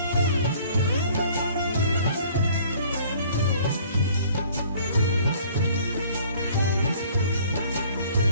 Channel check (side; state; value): both; inverted; correlation -0.54